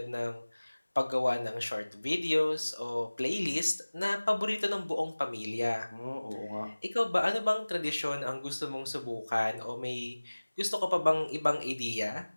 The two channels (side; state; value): both; inverted; correlation -1.00